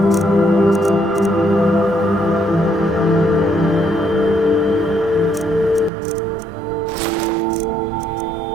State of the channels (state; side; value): drops out; left; at 5.9 s